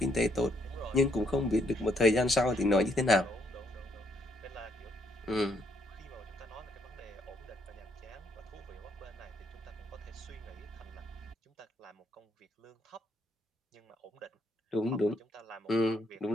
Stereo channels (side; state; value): both; normal; correlation 0.72